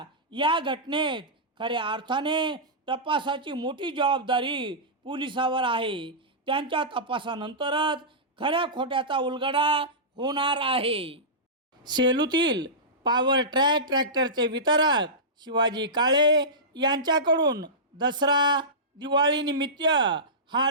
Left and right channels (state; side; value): normal; both; correlation -0.17